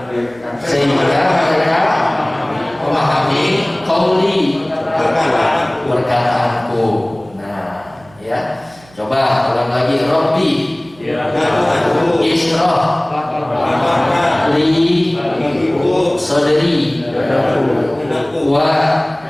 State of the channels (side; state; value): right; noise; hum, 27 dB below the sound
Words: sehingga mereka memahami qauli perkataanku. Nah, ya. Coba ulang lagi. Rabbi ishrah li sadri wa